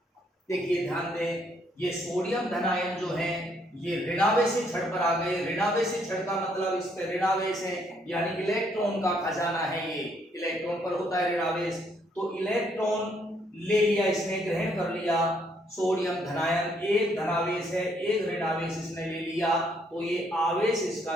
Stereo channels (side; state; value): both; normal; correlation 0.70